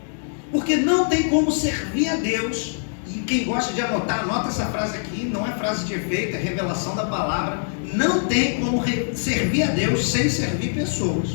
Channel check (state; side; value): silent; right; 63 dB below the other